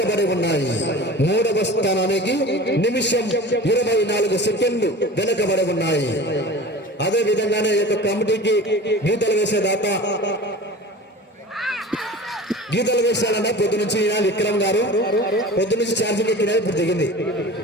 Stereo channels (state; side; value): normal; both; correlation 0.37